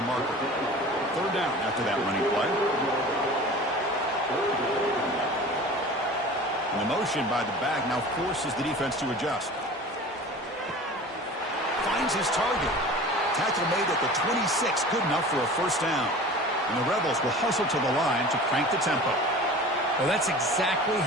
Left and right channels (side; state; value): both; normal; correlation 0.39